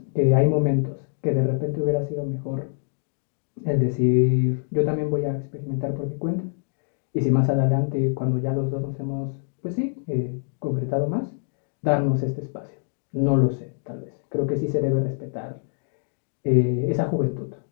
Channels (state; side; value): silent; right; 57 dB below the other